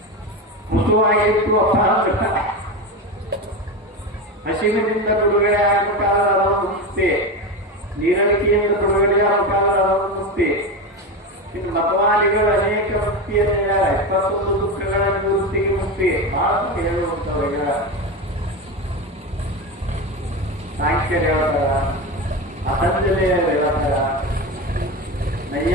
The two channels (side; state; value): both; normal; correlation 0.20